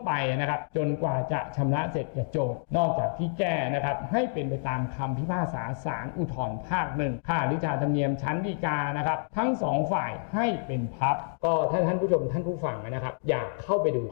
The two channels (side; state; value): right; silent; digital silence